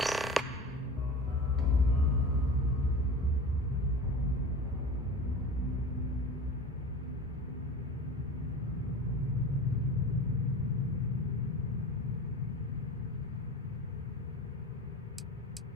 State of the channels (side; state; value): both; normal; correlation 0.34